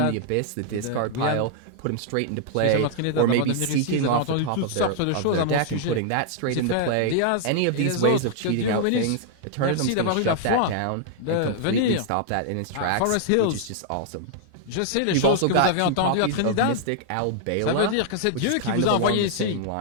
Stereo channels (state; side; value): different; both; correlation -0.01